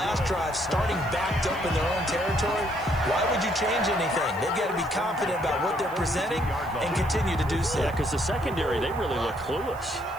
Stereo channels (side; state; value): right; noise; hiss, 23 dB below the sound